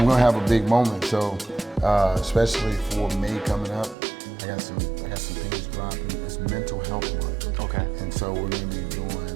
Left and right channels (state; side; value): drops out; left; at 4.0 s